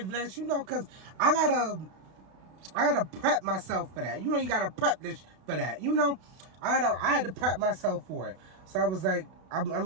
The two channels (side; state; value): left; late; 32 ms